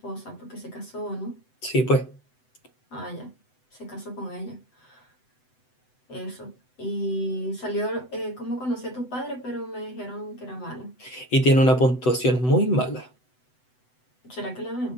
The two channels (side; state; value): right; late; 7.9 ms